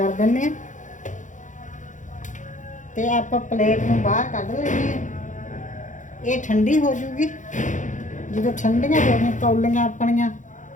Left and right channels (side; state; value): right; late; 0.36 ms